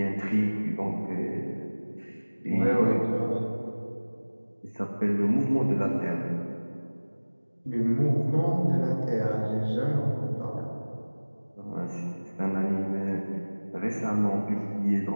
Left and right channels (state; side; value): inverted; both; correlation -1.00